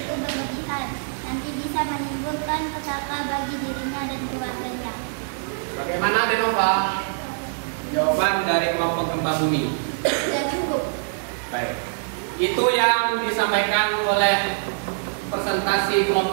berlebihan. Nanti bisa menimbulkan petaka bagi dirinya dan keluarganya. Bagaimana Denova? Jawaban dari kelompok gempa bumi. Sudah cukup. Baik. Itu yang disampaikan oleh presentasi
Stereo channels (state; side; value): silent; left; digital silence